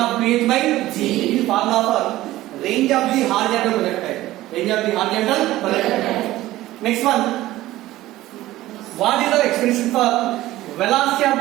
of 2h by g. This is formula for range of the horizontal projectile. Range of the horizontal projectile. Next one. What is the expression for velocity of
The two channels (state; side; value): quieter; left; 16.1 dB